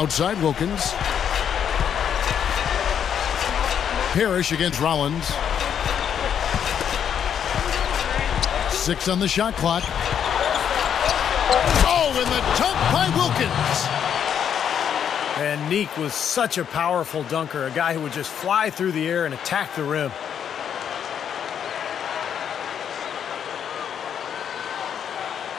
Wilkins. Parrish against Rollins. 6 on the shot clock. Oh, and the dunk by Wilkins. And Neek was such a powerful dunker, a guy who would just fly through the air and attack the rim.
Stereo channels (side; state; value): right; quieter; 8.5 dB